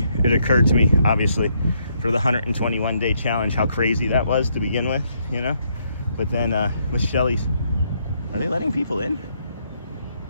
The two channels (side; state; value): both; inverted; correlation -0.73